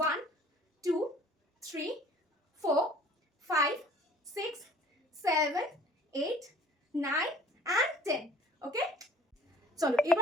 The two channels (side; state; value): both; normal; correlation 0.51